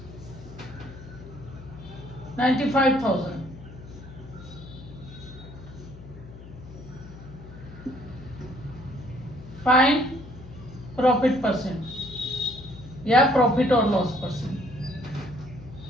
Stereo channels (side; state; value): left; noise; hum, 15 dB below the sound